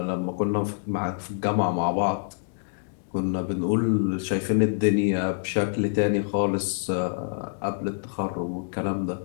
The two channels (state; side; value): silent; right; digital silence